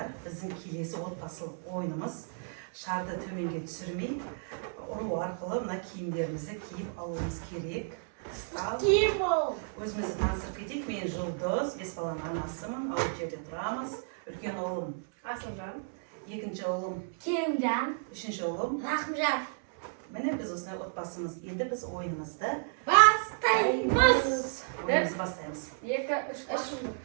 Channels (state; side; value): silent; left; 56 dB below the other